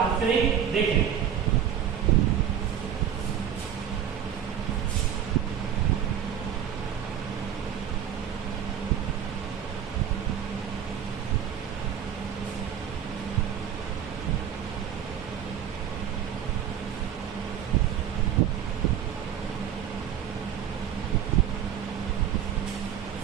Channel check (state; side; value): quieter; left; 9.2 dB